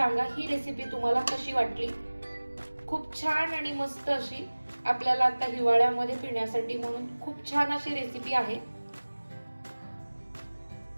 ही रेसिपी तुम्हाला कशी वाटली। खूप छान आणि मस्त अशी आपल्याला आता हिवाळ्यामध्ये पिण्यासाठी म्हणून खूप छान अशी रेसिपी आहे।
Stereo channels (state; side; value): inverted; both; correlation -1.00